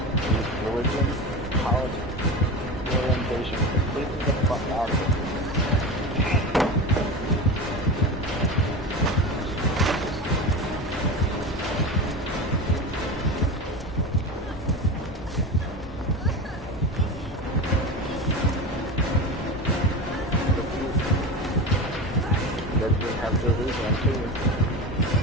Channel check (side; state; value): both; normal; correlation 0.25